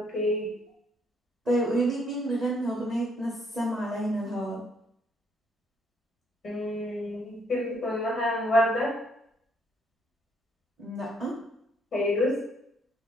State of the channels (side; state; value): both; normal; correlation 0.68